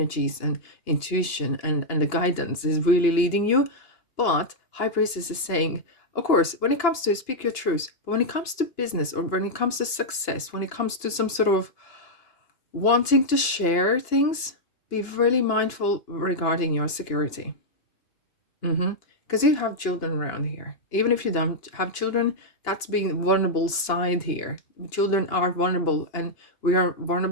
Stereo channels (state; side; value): late; right; 2.9 ms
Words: and intuition and the guidance is really leading you. But High Priestess is saying, of course, when it comes to speak your truth, but when it comes to business, or when it comes to success, when it comes to some sort of wanting to share things, be really mindful regarding your security. Because you have children around here. Even if you don't have children, that's being vulnerable side here. Children are vulnerable, and we are